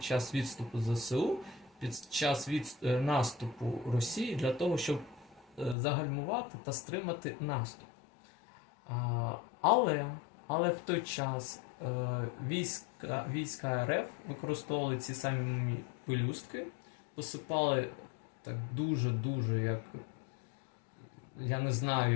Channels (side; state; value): right; drops out; at 5.8 s